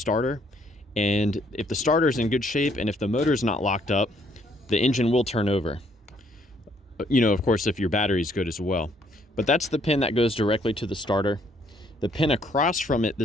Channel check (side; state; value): both; normal; correlation 0.67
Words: And if the starter is in good shape and if the motor is not locked up, the engine will turn over. You know, of course, if your battery is good as well. But that's the pin that goes directly to the starter. The pin across from it,